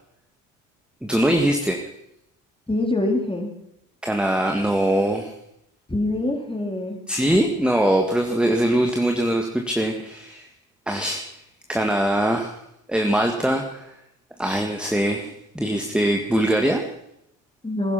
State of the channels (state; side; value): normal; both; correlation 0.79